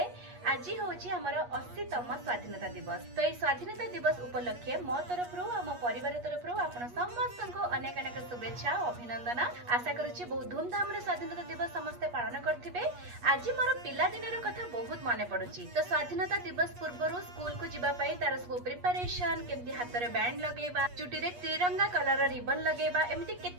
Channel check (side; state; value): left; late; 8.4 ms